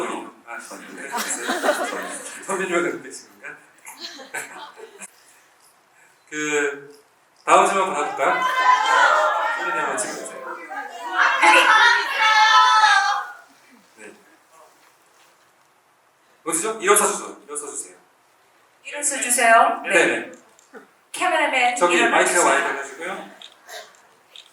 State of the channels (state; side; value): identical; both; correlation 1.00